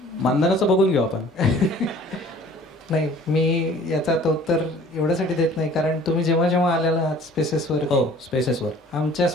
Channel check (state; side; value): normal; both; correlation 0.50